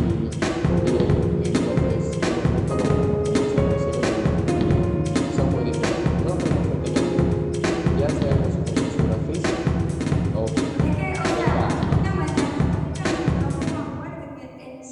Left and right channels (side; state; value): both; identical; correlation 1.00